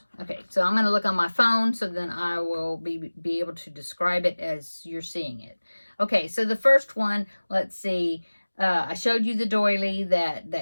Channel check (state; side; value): inverted; both; correlation -1.00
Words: Okay, so I'm going to look on my phone, so then I will be able to describe it as you're seeing it. Okay, so the first one, let's see. I showed you the doily